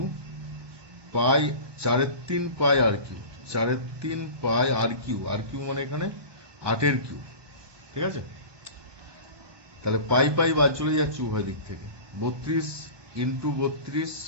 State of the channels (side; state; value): left; late; 1.2 ms